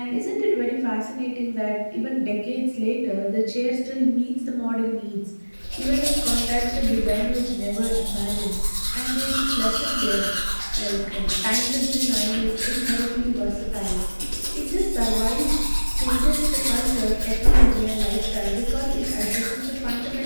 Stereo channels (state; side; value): inverted; both; correlation -1.00